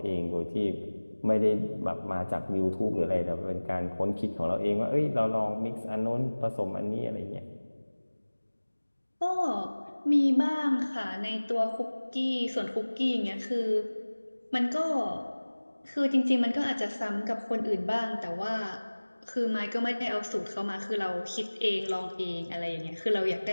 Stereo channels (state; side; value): inverted; both; correlation -1.00